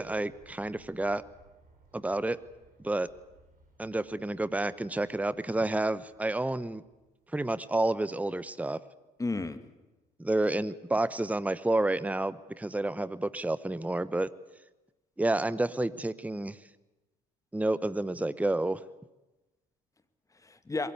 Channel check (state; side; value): normal; both; correlation 0.93